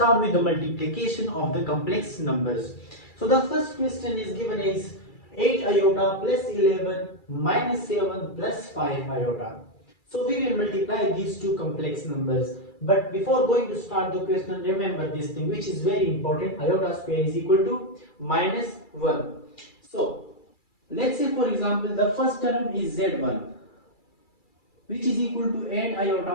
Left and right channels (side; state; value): right; late; 2.3 ms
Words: with the multiplication of the complex numbers. So the first question is given is 8 iota plus 11 minus 7 plus 5 iota. So we will multiply these two complex numbers. But before going to start the question, remember this thing which is very important. Iota square is equal to minus 1. So let's say for example the first term is z1, which is equal to 8